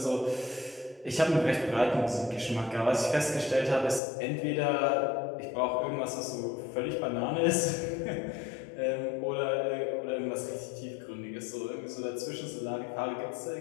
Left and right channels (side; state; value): right; drops out; at 4.0 s